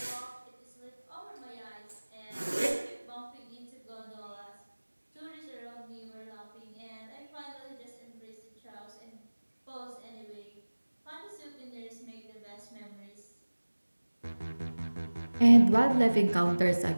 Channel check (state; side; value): inverted; both; correlation -1.00